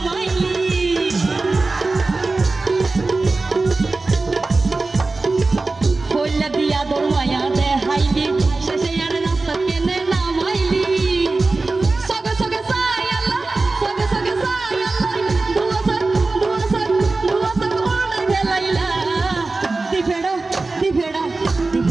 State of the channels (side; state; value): left; quieter; 3.5 dB